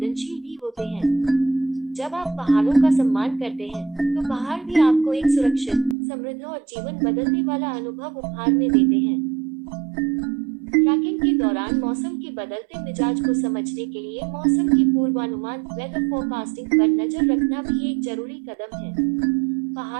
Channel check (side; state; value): left; drops out; at 6.0 s